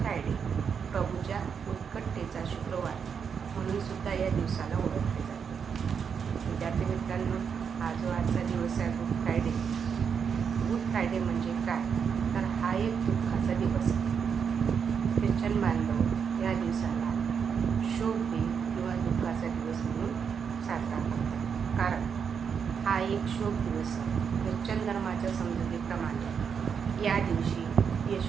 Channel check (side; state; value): left; quieter; 6.8 dB